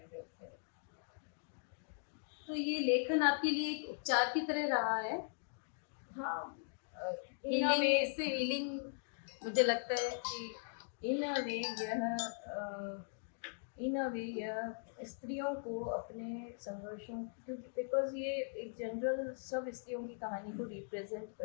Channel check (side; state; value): right; silent; digital silence